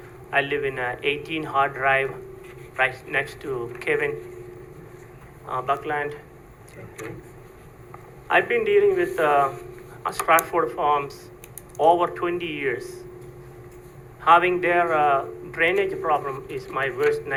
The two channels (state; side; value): identical; both; correlation 1.00